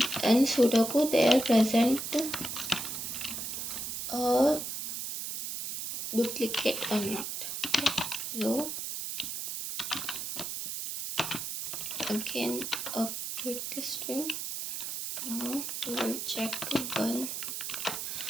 in Sudoku they are present a duplicate or not. So again a bit string. Now we will check 1.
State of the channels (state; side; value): noise; right; hiss, 5 dB below the sound